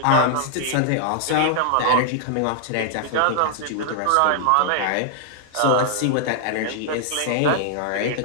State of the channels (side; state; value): both; different; correlation -0.01